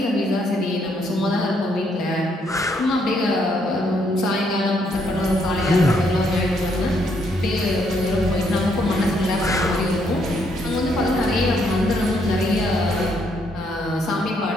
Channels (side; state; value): both; normal; correlation 0.72